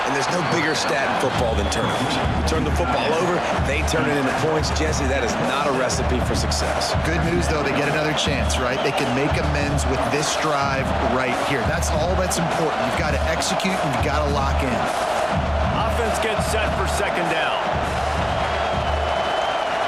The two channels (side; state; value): both; identical; correlation 1.00